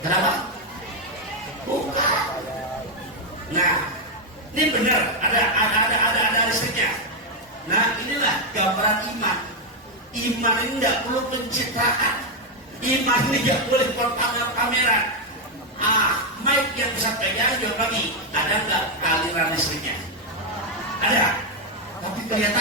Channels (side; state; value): both; normal; correlation 0.02